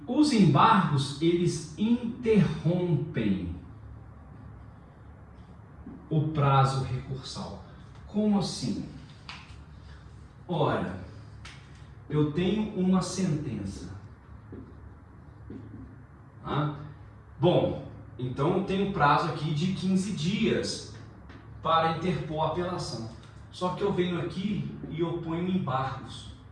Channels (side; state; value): both; identical; correlation 1.00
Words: os embargos, eles interrompem o prazo recursal. Como assim? Ora, eu tenho uma sentença. Tá? Bom, então eu tenho prazo aqui de 15 dias para interpor a apelação. Só que eu venho aqui e oponho embargos.